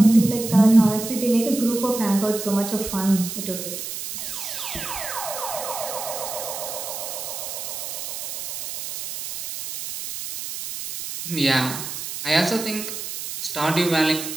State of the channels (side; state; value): right; noise; hiss, 7 dB below the sound